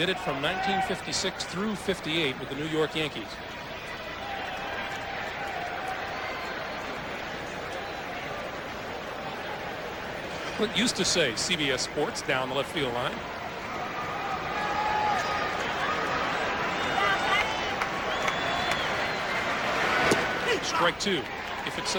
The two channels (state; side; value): identical; both; correlation 1.00